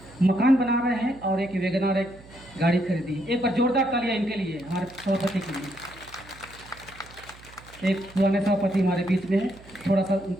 मकान बना रहे हैं और एक वैगनआर एक गाड़ी खरीदी। एक बार जोरदार तालियां इनके लिए, हमारे सभापति के लिए। एक पुराने सभापति हमारे बीच में है, थोड़ा सा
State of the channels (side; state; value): right; noise; hum, 22 dB below the sound